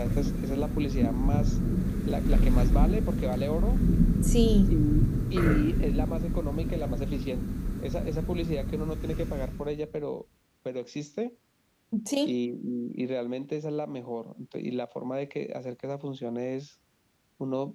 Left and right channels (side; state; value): both; identical; correlation 1.00